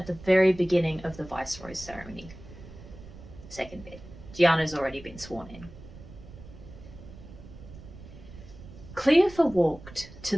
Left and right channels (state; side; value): noise; right; rumble, 16 dB below the sound